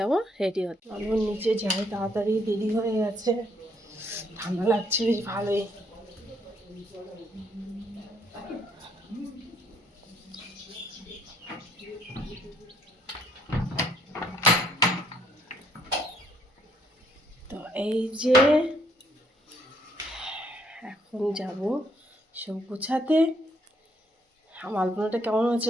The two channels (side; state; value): both; normal; correlation 0.69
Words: রেডি হতে। আমি নিচে যাই, তাড়াতাড়ি দেরি হয়ে গেছে, ঠান্ডা লাগছে বেশ ভালোই। তো এই যে এখন যাব সব গোছাতে। আমার আলপনাটা কেমন